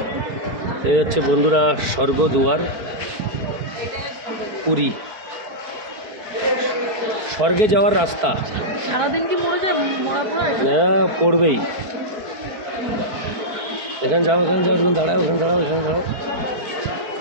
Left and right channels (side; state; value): left; late; 4.5 ms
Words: এই হচ্ছে বন্ধুরা স্বর্গদুয়ার পুরী। স্বর্গে যাওয়ার রাস্তা। হ্যাঁ, পড়বেই। এখানে যাও, এখানে যাও, এখানে দাঁড়াও, এখানে দাঁড়াও, এখানে দাঁড়াও,